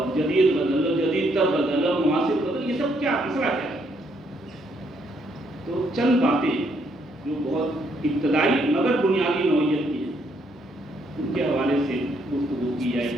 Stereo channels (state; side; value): normal; both; correlation 0.72